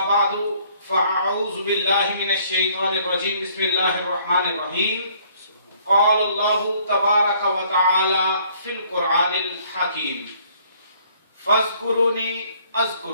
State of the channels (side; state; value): both; inverted; correlation -0.61